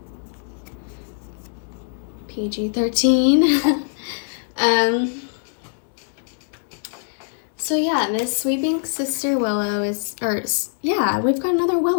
PG-13. So yeah, this Sweeping Sister Willow is, we've got another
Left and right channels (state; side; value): silent; right; digital silence